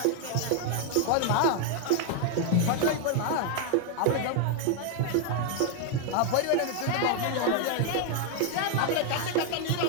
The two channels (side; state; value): both; different; correlation 0.00